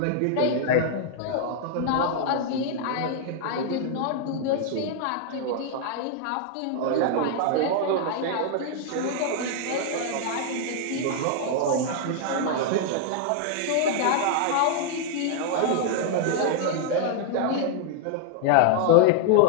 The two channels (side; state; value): both; different; correlation 0.00